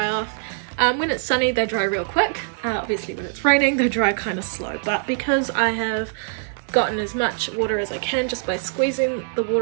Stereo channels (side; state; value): left; silent; digital silence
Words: off. When it's sunny they dry real quick. Obviously when it's raining they dry kind of slow, but because I have gotten as much water as I can just by squeezing the